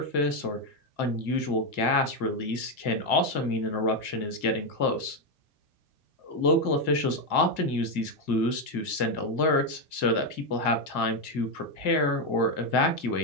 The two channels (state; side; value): late; right; 2.1 ms